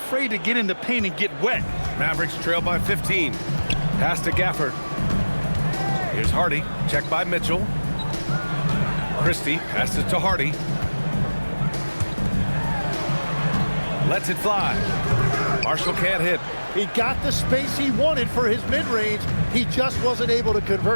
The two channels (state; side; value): inverted; both; correlation -1.00